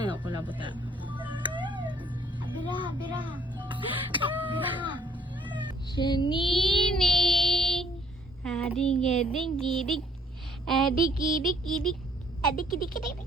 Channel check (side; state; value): both; normal; correlation 0.62